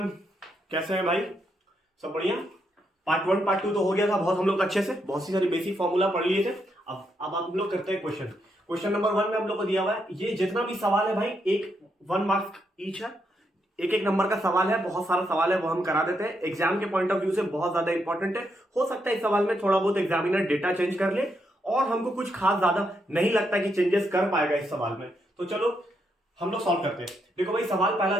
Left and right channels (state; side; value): normal; both; correlation 0.79